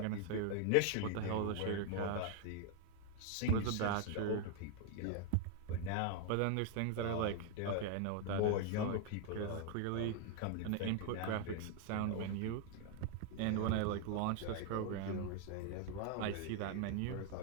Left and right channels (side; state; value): both; different; correlation 0.00